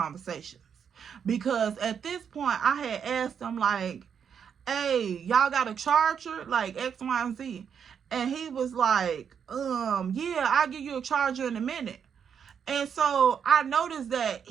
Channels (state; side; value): quieter; left; 7.5 dB